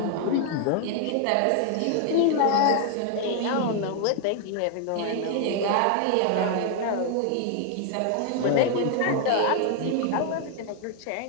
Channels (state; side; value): different; both; correlation 0.00